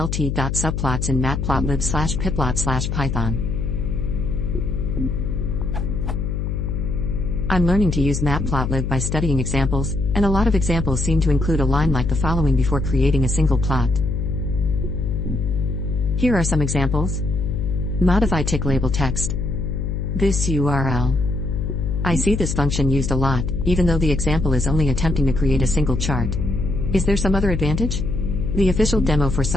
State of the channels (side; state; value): left; noise; hum, 1 dB below the sound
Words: in Matplotlib/Pyplot/Python? I'm learning to use Matplotlib by studying examples, and a lot of examples seem to include a line like the following before creating a single plot. Here are some examples. Modify tick label text. This URL. I see this function used a lot, even though the example is only attempting to create a single chart. Is there some other advantage? The official demo for